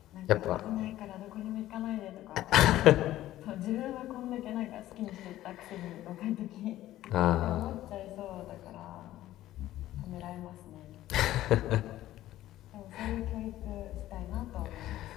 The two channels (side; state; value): right; quieter; 14.4 dB